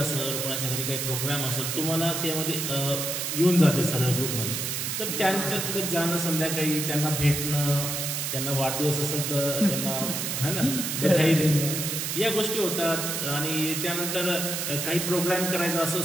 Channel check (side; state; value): right; noise; hiss, 2 dB below the sound